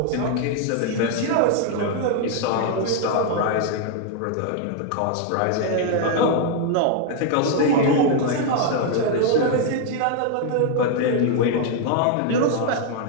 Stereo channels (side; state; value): both; different; correlation 0.00